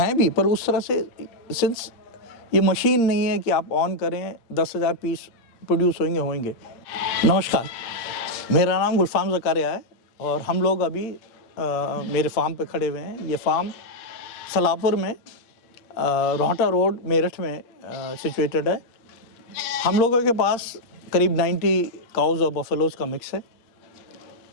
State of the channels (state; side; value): late; right; 8.7 ms